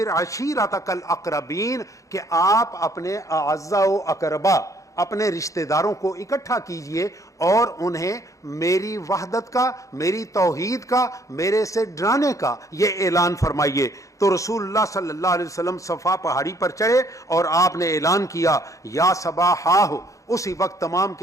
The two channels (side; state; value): right; late; 0.16 ms